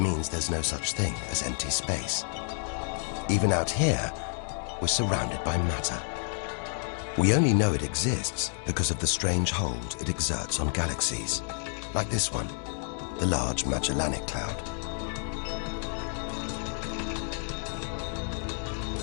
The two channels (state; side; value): silent; right; 58 dB below the other